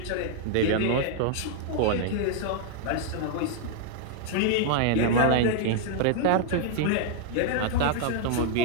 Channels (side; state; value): both; different; correlation 0.00